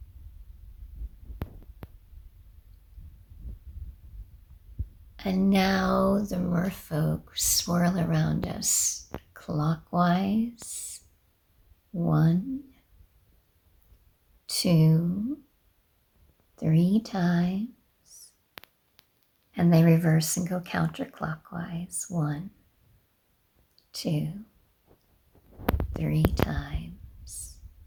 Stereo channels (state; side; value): identical; both; correlation 1.00